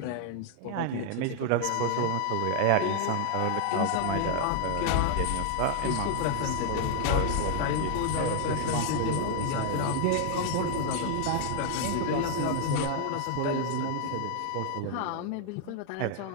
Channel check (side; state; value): both; different; correlation 0.00